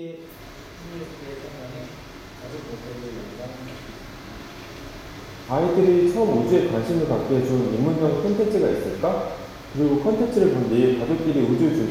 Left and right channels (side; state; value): both; identical; correlation 1.00